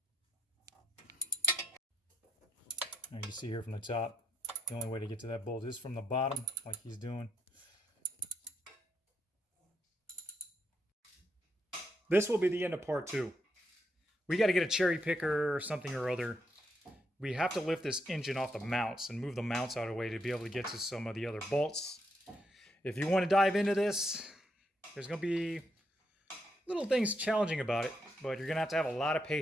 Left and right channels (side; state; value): both; normal; correlation 0.78